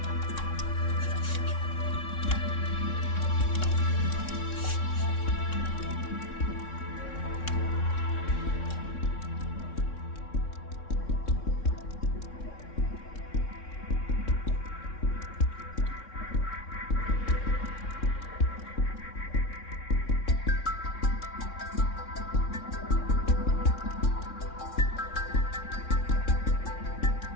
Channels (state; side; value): late; right; 3.6 ms